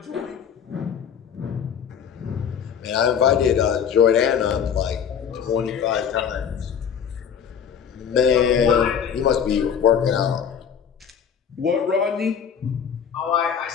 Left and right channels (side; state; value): right; quieter; 7.7 dB